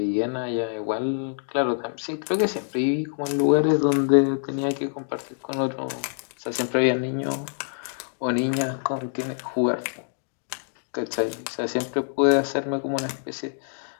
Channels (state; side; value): silent; right; digital silence